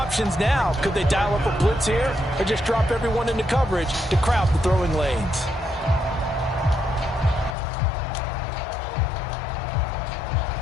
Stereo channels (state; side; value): drops out; right; at 7.6 s